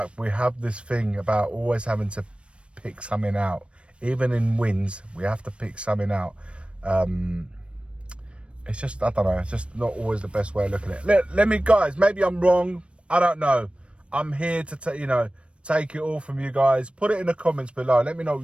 we have this thing about always having to pick something out. Even in wins, we have to pick something out. It's just, I don't know, it's just not always the best way of looking at it. Let me, guys, maybe I'm wrong. I don't know. I'm here to, take it all from you guys. Put it in the comments below. Let me know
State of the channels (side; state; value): left; late; 0.059 ms